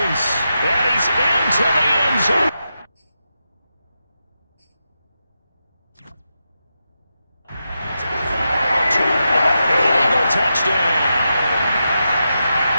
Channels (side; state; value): both; inverted; correlation -0.88